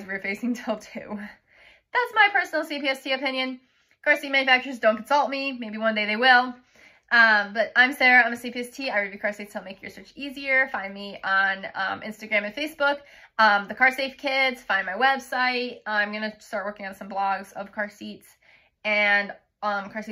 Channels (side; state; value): both; identical; correlation 1.00